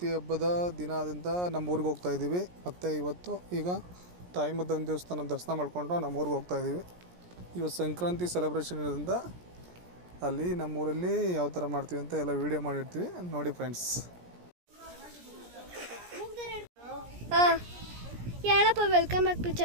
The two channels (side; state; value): left; late; 17 ms